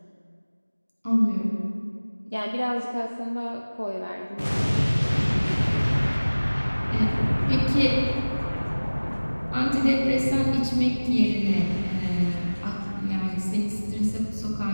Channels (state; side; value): inverted; both; correlation -1.00